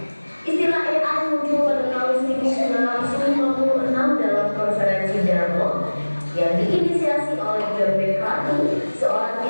Istilah AI muncul pada tahun 1956 dalam konferensi Dartmouth yang diinisiasi oleh John McCarthy, seorang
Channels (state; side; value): inverted; both; correlation -1.00